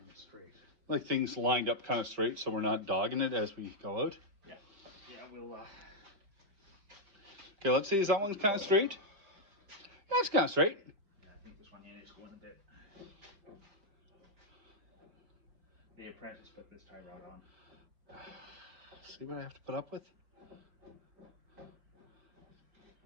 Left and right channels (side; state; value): left; late; 5.0 ms